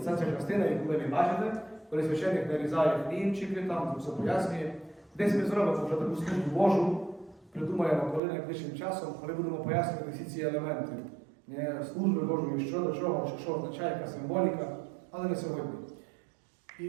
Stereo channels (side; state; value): left; drops out; at 8.2 s